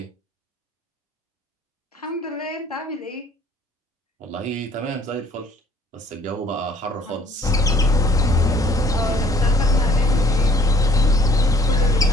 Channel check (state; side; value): normal; both; correlation 0.57